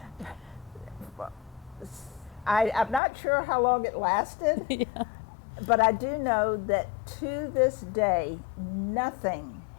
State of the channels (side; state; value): right; drops out; at 3.0 s